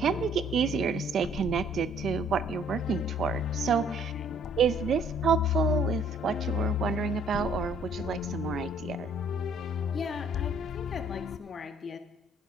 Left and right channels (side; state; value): both; normal; correlation 0.60